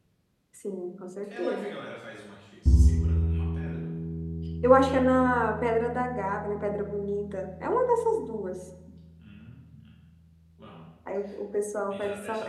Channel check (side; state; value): both; identical; correlation 1.00